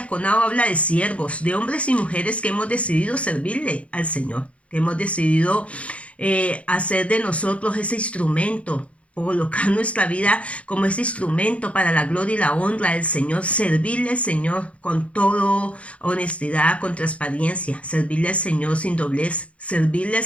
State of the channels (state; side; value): late; right; 0.063 ms